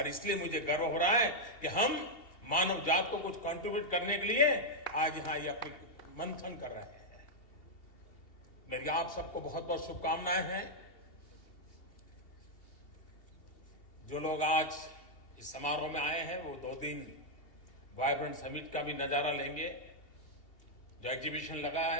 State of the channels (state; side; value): late; right; 2.7 ms